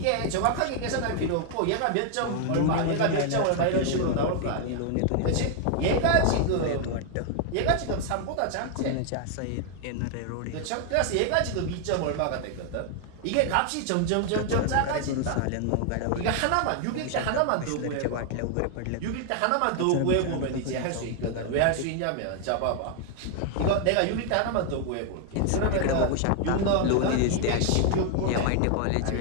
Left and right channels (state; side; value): different; both; correlation 0.00